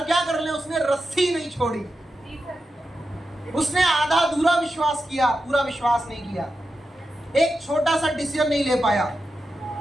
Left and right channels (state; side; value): normal; both; correlation 0.90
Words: क्या कर ले, उसने रस्सी नहीं छोड़ी, उसने आधा अधूरा विश्वास किया, पूरा विश्वास नहीं किया, एक छोटा सा डिसीजन नहीं ले पाया।